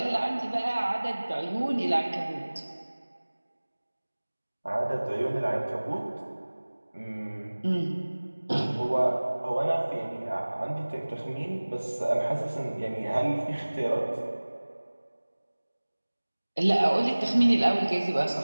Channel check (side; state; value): both; inverted; correlation -1.00